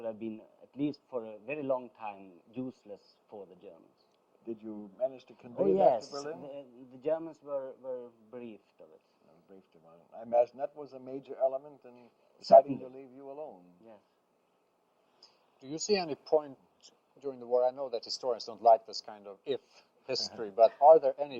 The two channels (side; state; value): both; identical; correlation 1.00